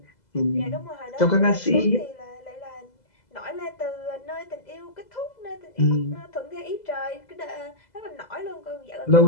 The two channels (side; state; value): right; late; 2.0 ms